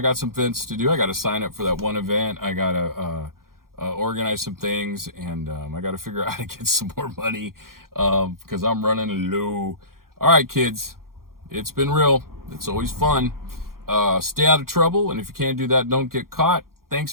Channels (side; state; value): left; late; 0.92 ms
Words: some events to do. I got to sign up for that one event. I got to organize some things, and I got to figure out how to get some more money because I'm running low. All right, kids, it's been real. It's always fun. Stay out of trouble, and if you can't do that, don't get caught. Thanks